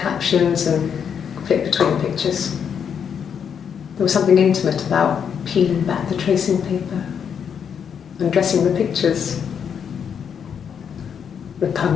and flip between the pictures. There was something intimate about peeling back the tracing paper, undressing the pictures.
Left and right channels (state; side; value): quieter; right; 7.5 dB